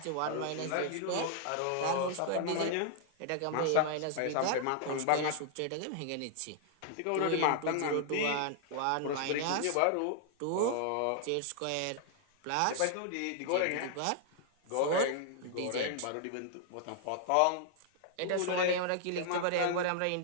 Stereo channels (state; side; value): different; both; correlation 0.00